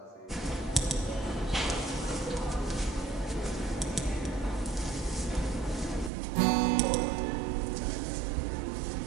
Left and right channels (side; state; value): left; drops out; at 6.1 s